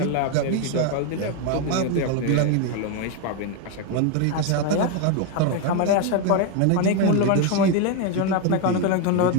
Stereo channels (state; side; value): different; both; correlation 0.01